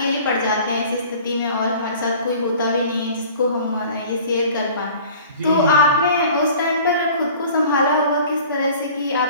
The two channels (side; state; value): both; inverted; correlation -0.47